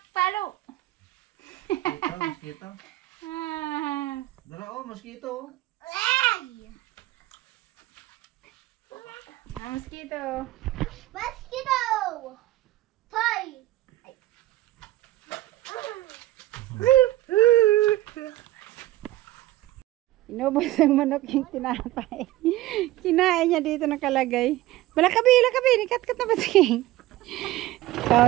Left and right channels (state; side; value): quieter; left; 16.2 dB